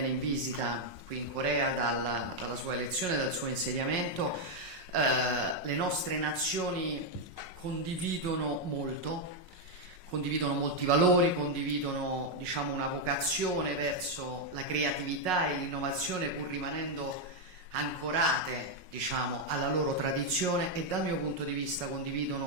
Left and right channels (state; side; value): late; left; 5.5 ms